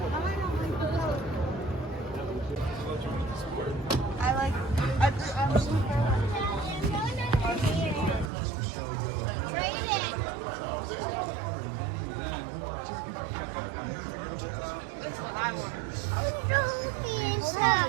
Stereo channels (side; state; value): left; drops out; at 8.3 s